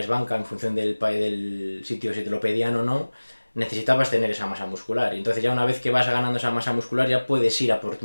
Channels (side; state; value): both; inverted; correlation -1.00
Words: banca en función del sitio si te lo pedían o no, necesitabas tener esa masa muscular. Y entonces ya una vez que vas ganando esa masa muscular ya puedes ir a por